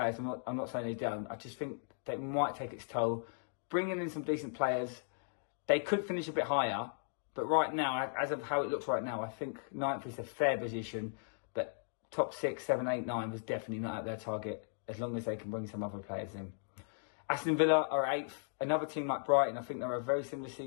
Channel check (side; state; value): right; silent; digital silence